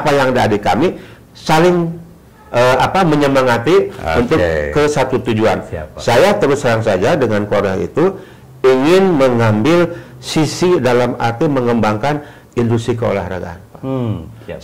yang ada di kami saling menyemangati untuk ke satu tujuan. Saya terus terang saja dengan Korea itu ingin mengambil sisi dalam arti mengembangkan industri keolahragaan.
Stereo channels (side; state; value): both; identical; correlation 1.00